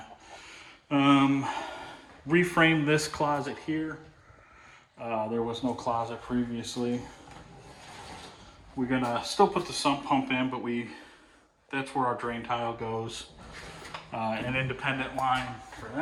Reframed this closet here. There was no closet previously. We're gonna still put the sump pump in, but that's where our drain tile goes. An independent line for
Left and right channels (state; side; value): identical; both; correlation 1.00